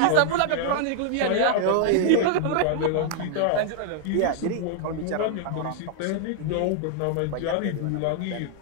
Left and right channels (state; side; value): different; both; correlation -0.01